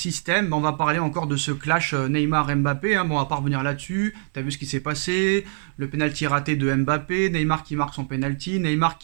bah, on va parler encore de ce clash Neymar-Mbappé. Hein. Bon, on va pas revenir là-dessus. T'as vu ce qui s'est passé, le penalty raté de Mbappé, Neymar qui marque son penalty, Neymar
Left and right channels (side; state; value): left; silent; 63 dB below the other